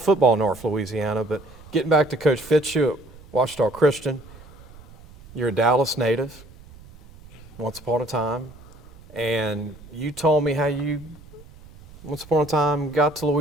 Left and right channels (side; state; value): right; noise; rumble, 21 dB below the sound